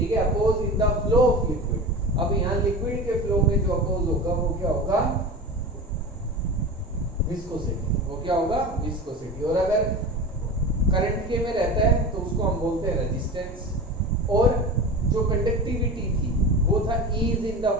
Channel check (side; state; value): both; normal; correlation 0.30